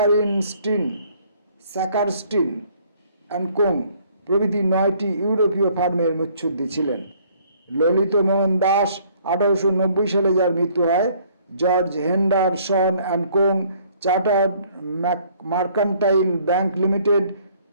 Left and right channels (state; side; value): inverted; both; correlation -0.61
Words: and co প্রভৃতি 9টি ইউরোপীয় ফার্মের মুচ্ছুদ্দি ছিলেন। ললিত মোহন দাস 1890 সালে যার মৃত্যু হয়, George Henderson and co, chartered mercantile bank limited,